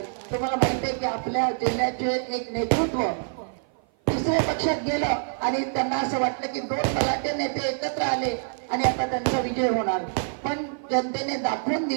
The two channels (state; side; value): silent; left; 55 dB below the other